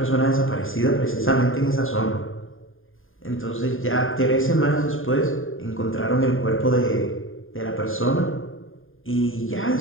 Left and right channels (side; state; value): right; late; 0.59 ms